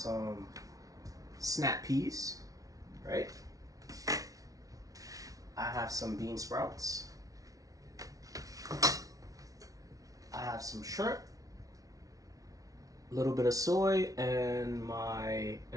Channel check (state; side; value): late; left; 0.17 ms